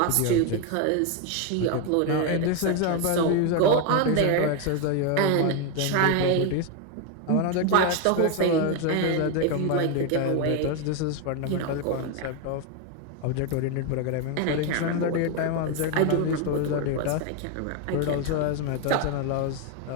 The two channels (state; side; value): different; both; correlation 0.01